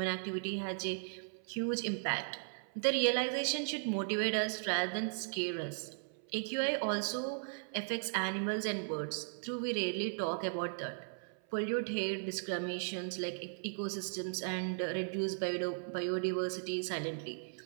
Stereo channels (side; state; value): left; silent; 53 dB below the other